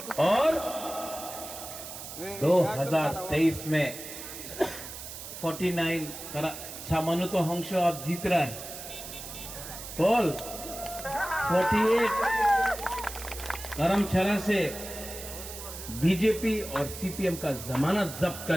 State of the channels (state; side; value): noise; right; hiss, 11 dB below the sound